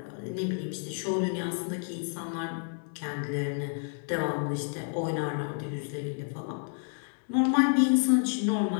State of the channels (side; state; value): right; silent; 58 dB below the other